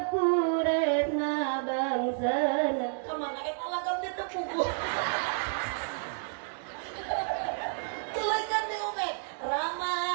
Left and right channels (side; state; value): left; silent; digital silence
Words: puretna bangsana kemana eta lagam teh tepugu kelaikan di Ubed